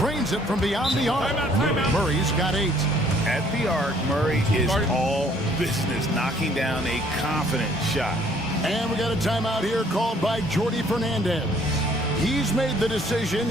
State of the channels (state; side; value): normal; both; correlation 0.61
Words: it from beyond the arc. Murray's got 8. At the arc, Murray is all business, knocking down a confident shot. And we got a timeout here called by Jordi Fernandez. He's made the decision.